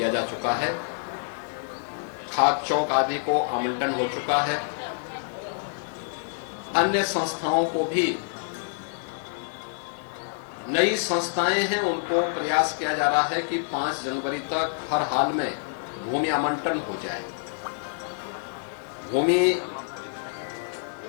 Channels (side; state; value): right; silent; 60 dB below the other